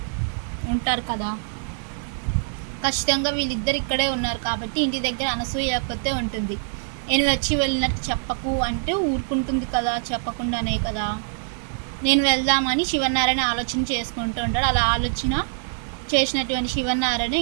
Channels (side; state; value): left; silent; digital silence